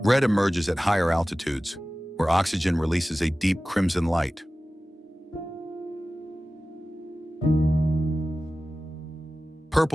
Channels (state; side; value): normal; both; correlation 0.96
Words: Red emerges at higher altitudes, where oxygen releases a deep crimson light.